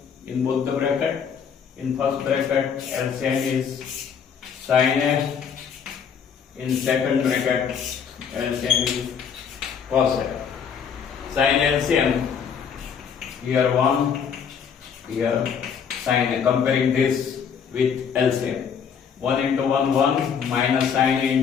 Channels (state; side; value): quieter; right; 7.1 dB